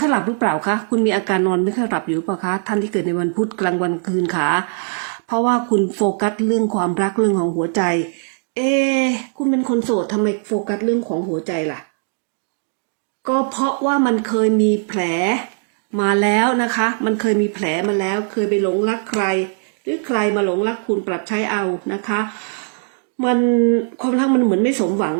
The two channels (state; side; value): silent; left; digital silence